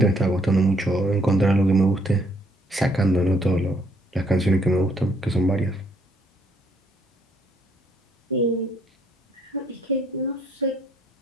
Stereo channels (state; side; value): normal; both; correlation 0.68